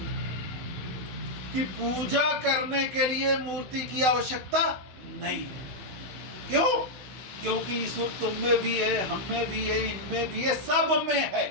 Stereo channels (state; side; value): late; left; 16 ms